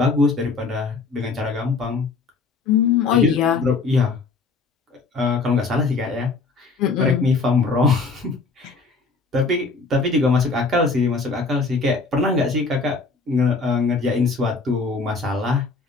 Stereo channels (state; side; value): quieter; right; 4.2 dB